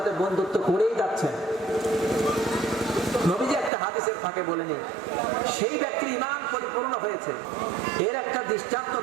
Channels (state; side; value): drops out; left; at 3.7 s